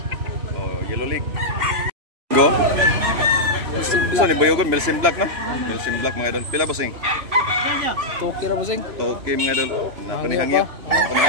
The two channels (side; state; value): left; late; 3.0 ms